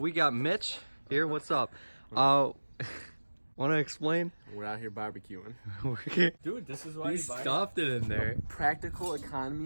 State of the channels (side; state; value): both; inverted; correlation -1.00